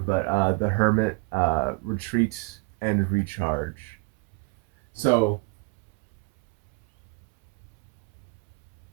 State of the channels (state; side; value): quieter; left; 30.7 dB